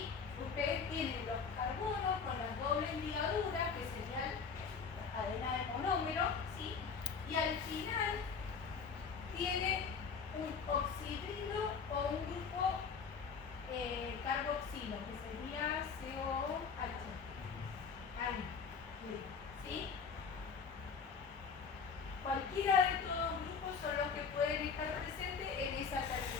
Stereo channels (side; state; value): right; quieter; 5.8 dB